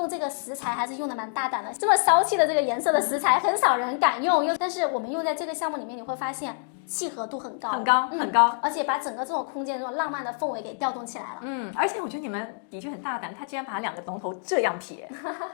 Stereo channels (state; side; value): silent; right; digital silence